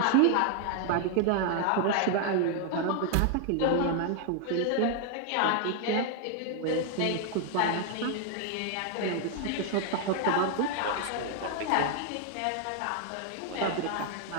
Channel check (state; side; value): different; both; correlation 0.00